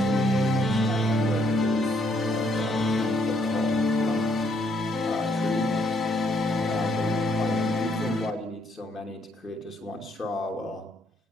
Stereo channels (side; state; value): both; normal; correlation 0.70